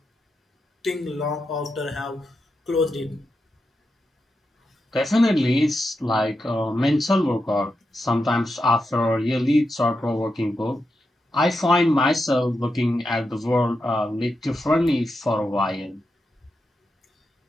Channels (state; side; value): normal; both; correlation 0.87